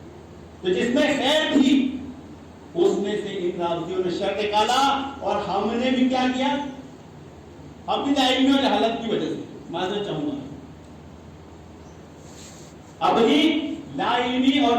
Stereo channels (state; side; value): identical; both; correlation 1.00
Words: تو جس میں خیر تھی اس میں سے ان رافضیوں نے شر نکالا، اور ہم نے بھی کیا کیا؟ اپنی علمی اور جہالت کی وجہ سے، معذرت چاہوں گا، اپنی لا علمی اور